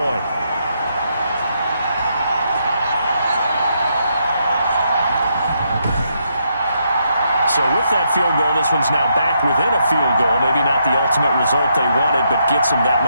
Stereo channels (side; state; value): both; inverted; correlation -0.77